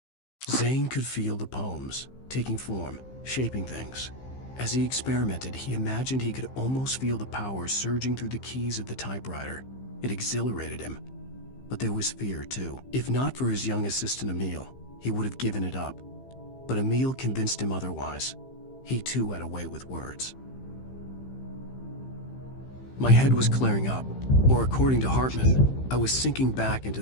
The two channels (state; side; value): late; right; 15 ms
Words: Zane could feel the poems, taking form, shaping things. As he experimented, he imagined he could almost feel the power surging through the keys of the typewriter. It exhilarated him. But there was fear, too. If not for his young assistant Emil, he would have given it up. But Emil convinced him otherwise. He too had a way with words. My head was clearing up, or according to Hartman, I was sinking back into